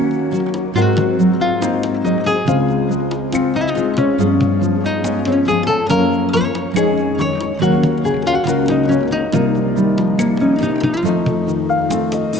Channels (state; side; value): normal; both; correlation 0.61